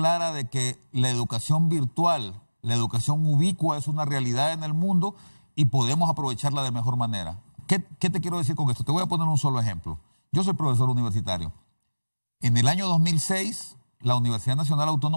de que la educación virtual, la educación ubicua es una realidad en el mundo y podemos aprovecharla de mejor manera. ¿Qué te quiero decir con esto? Te voy a poner un solo ejemplo. Yo soy profesor universitario. En el año 2006, la Universidad Nacional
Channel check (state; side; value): inverted; both; correlation -1.00